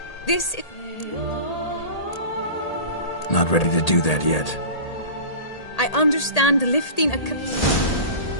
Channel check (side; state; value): right; late; 1.8 ms